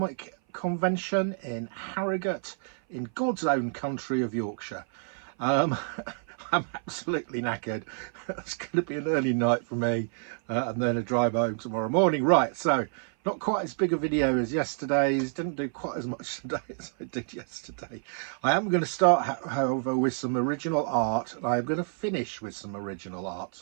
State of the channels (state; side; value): silent; left; 57 dB below the other